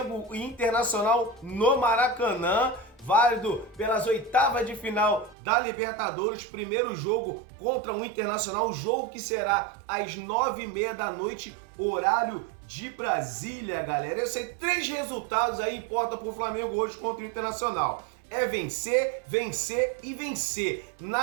e Internacional no Maracanã, válido pelas oitavas de final da Libertadores, primeiro jogo contra o Internacional, jogo que será às 9h30 da noite, horário de Brasília, galera. Eu sei, 3 resultados aí importam para o Flamengo hoje contra o Internacional. É vencer, vencer e vencer.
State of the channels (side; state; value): left; drops out; at 5.4 s